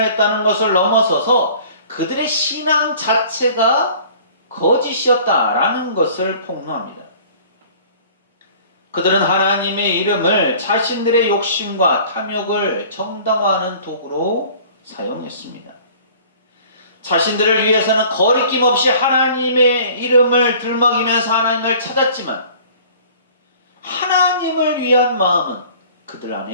했다는 것을 넘어서서 그들의 신앙 자체가 거짓이었다라는 것을 폭로합니다. 그들은 하나님의 이름을 자신들의 욕심과 탐욕을 정당화하는 도구로 사용했습니다. 자신들을 위해서는 거리낌 없이 하나님의 이름을 들먹이면서 하나님을 찾았지만 하나님을 위한 마음은 그들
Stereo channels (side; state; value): both; inverted; correlation -0.49